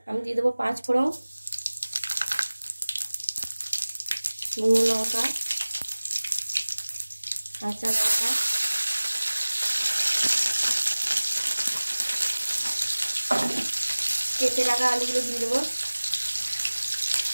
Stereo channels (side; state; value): both; inverted; correlation -1.00